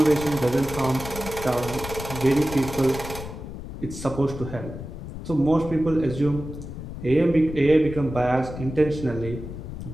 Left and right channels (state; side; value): noise; left; rumble, 10 dB below the sound